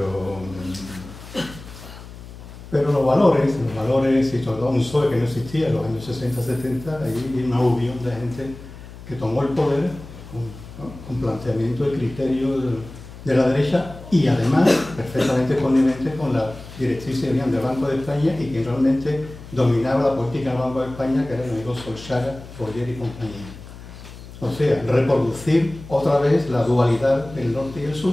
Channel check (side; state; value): left; noise; hum, 16 dB below the sound